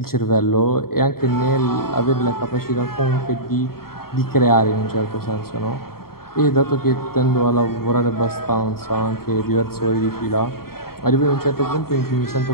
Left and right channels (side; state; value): right; late; 0.93 ms